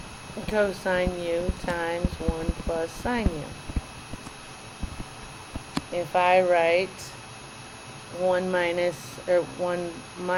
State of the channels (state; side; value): identical; both; correlation 1.00